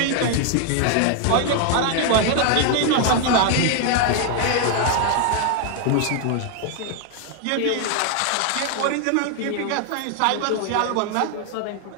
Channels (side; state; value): both; different; correlation 0.00